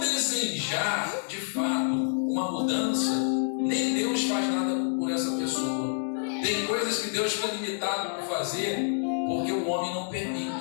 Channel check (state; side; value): silent; right; digital silence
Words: de fato uma mudança, nem Deus faz nada por essa pessoa. Tem coisas que Deus fica limitado por fazer porque o homem não